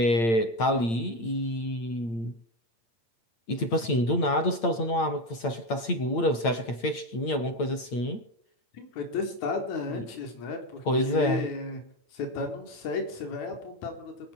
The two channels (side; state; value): right; late; 8.8 ms